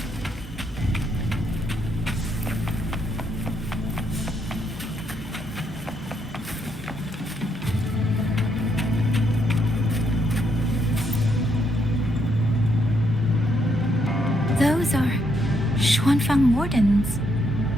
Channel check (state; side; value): normal; both; correlation 0.75